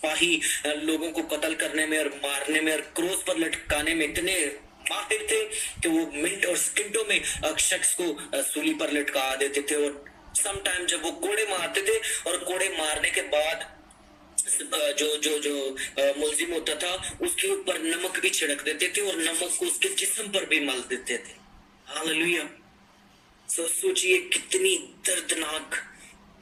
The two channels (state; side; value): identical; both; correlation 1.00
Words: लोगों को कत्ल करने में और मारने में और क्रोस पर लटकाने में इतने माहिर थे कि वो मिनट और सेकंडों में शख्स को सूली पर लटका देते थे। और सम टाइम जब वो कोड़े मारते थे और कोड़े मारने के बाद जो मुलजिम होता था उसके ऊपर नमक भी छिड़क देते थे और नमक को उसके जिस्म पर भी मल देते थे। हालेलुया। सोचिए कितनी दर्दनाक